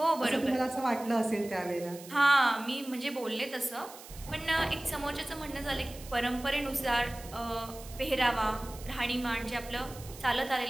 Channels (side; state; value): right; noise; hiss, 17 dB below the sound